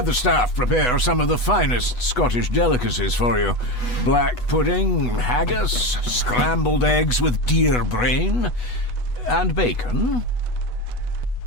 the staff prepare some of the finest Scottish delicacies for you. Black pudding, haggis, scrambled eggs with deer brain, and bacon.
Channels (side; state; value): right; late; 8.1 ms